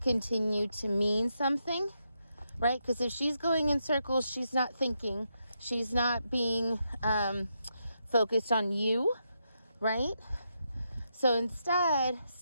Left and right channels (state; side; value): inverted; both; correlation -0.83